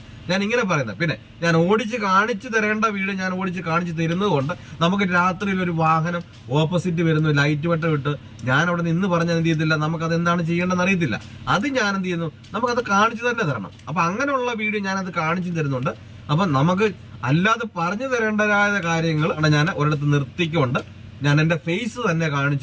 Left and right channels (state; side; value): identical; both; correlation 1.00